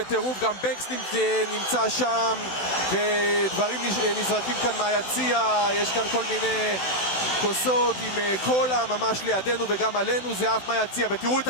גם בנקס נמצא שם, ודברים נזרקים כאן מהיציע, יש כאן כל מיני כוסות עם קולה ממש לידינו וגם עלינו, זה אף מהיציע, ותראו את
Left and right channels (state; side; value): late; right; 16 ms